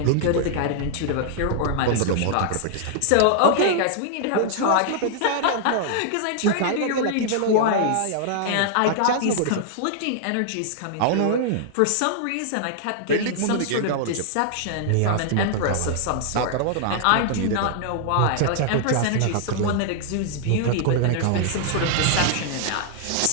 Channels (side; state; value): both; different; correlation -0.01